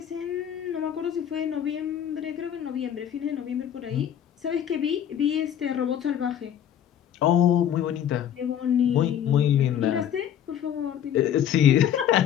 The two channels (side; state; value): right; quieter; 9.8 dB